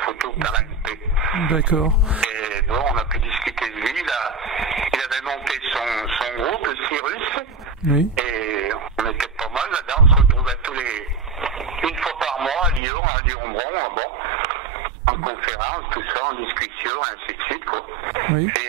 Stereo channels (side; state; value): left; drops out; at 12.8 s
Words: photo par la MP. D'accord. Et bon, on a pu discuter de lui, là. Il avait monté son groupe, le Cyrus. Oui. Et on était pas mal là-dedans, on se retrouvait une fois par mois à Lyon, à Lyon-Bron, en conférence, tout ça, en discussion, ainsi de suite, quoi. Oui.